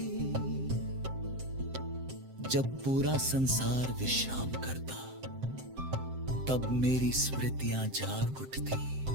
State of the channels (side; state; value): left; late; 7.7 ms